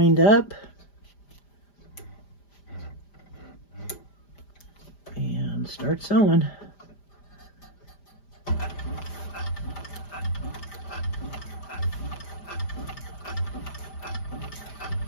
up. And start sewing.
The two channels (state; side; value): late; right; 5.0 ms